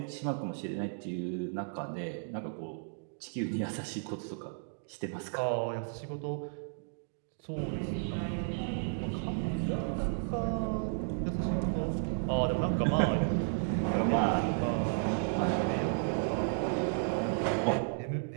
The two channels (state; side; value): silent; left; digital silence